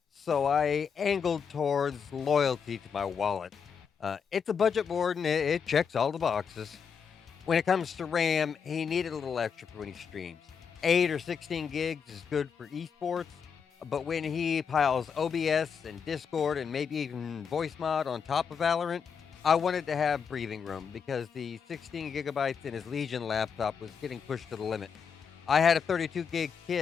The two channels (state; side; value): quieter; right; 6.6 dB